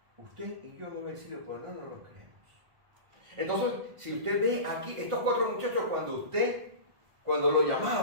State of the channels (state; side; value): late; left; 1.5 ms